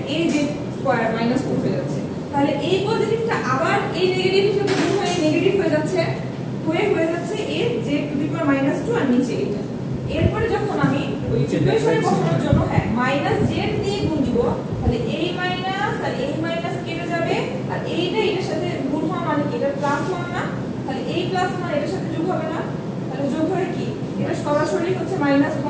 এই যে স্কয়ার -2 হয়ে যাচ্ছে। তাহলে এই পজিটিভটা আবার এই নেগেটিভ হিসেবে গুণ হয়ে নেগেটিভ হয়ে যাচ্ছে, হয়ে যাচ্ছে এই z টু দি পাওয়ার -2 আর নিচে এটা। এরপরে যখন আমি ওই ইকুয়েশনে বসানোর জন্য z দিয়ে গুণ দিব, তাহলে এই মাইনাস আর এই মাইনাস কেটে যাবে আর এইটা এটার সাথে গুণ হওয়া মানে কি, এটা +1 না, তাহলে এই +1 এটার সাথে যোগ হবে না, তাহলে যোগ হয়ে কি এটা সরাসরি হচ্ছে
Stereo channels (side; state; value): both; identical; correlation 1.00